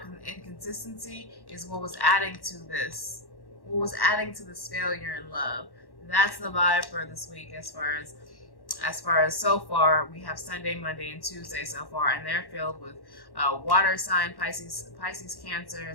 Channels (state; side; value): late; right; 1.1 ms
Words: inconsistency is what was adding to this, failure in love. That's the vibe for this week as far as so far. We have Sunday, Monday, and Tuesday so far, and they're filled with water sign, Pisces, Cancer,